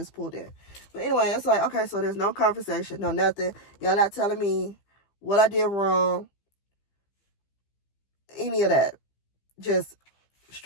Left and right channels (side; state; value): right; late; 15 ms